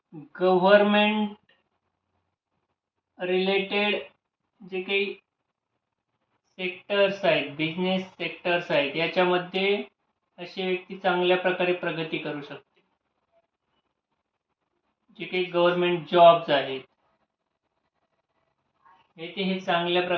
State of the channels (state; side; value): identical; both; correlation 1.00